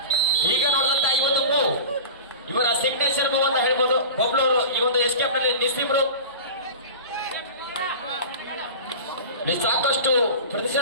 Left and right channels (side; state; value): both; inverted; correlation -0.33